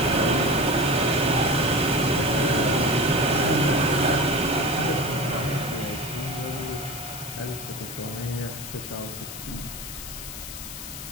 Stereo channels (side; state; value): left; noise; hiss, 10 dB below the sound